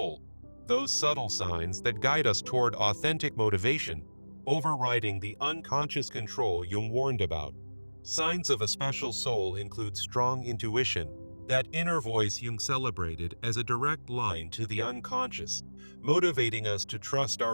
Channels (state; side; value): inverted; both; correlation -1.00